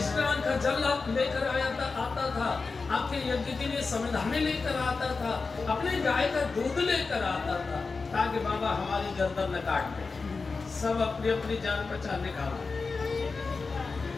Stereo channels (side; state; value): right; quieter; 4.3 dB